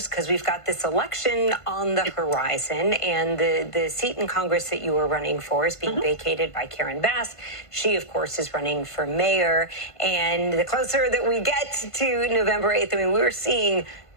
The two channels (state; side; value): late; right; 1.5 ms